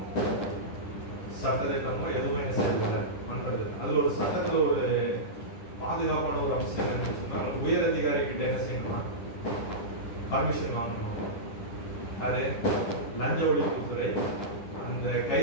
சட்டத்திட்டமோ எதுவும் என்ன செய்யறதில்லை, பண்றது. அதுல ஒரு சட்டத்துல ஒரு பாதுகாப்பான ஒரு அம்சம் என்னன்னு சொன்னா, உயர் அதிகாரி கிட்ட என்ன செய்யணுமா, பர்மிஷன் வாங்கணும். அது லஞ்ச ஒழிப்புத்துறை அந்த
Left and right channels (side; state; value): right; late; 10 ms